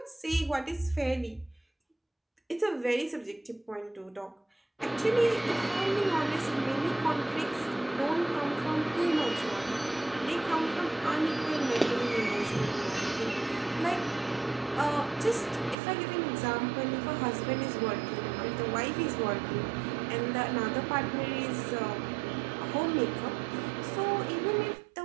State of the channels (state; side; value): drops out; left; at 15.8 s